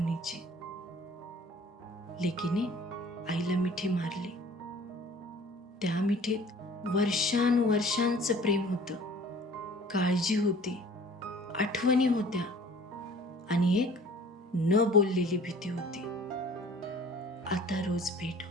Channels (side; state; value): both; normal; correlation 0.49